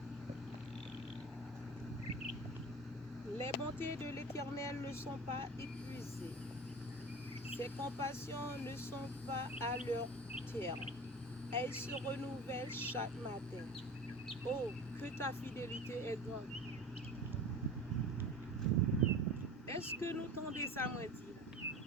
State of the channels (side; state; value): both; normal; correlation 0.35